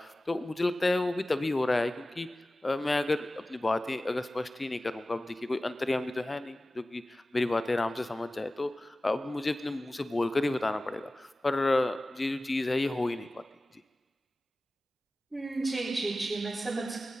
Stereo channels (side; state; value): both; normal; correlation 0.96